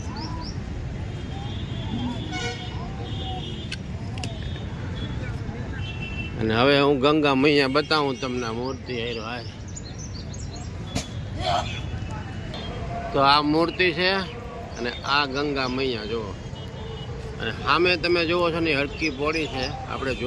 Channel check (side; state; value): both; identical; correlation 1.00